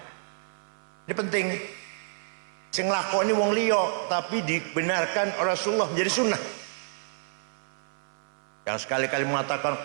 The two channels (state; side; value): silent; left; 59 dB below the other